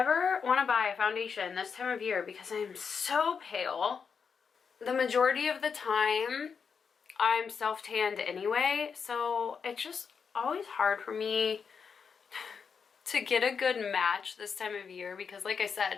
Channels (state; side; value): quieter; right; 6.1 dB